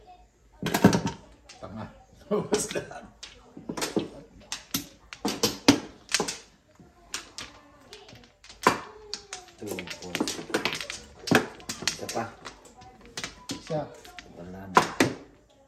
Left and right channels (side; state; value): both; identical; correlation 1.00